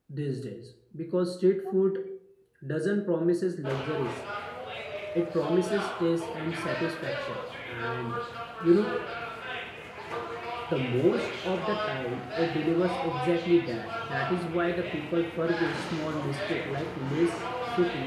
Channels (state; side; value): identical; both; correlation 1.00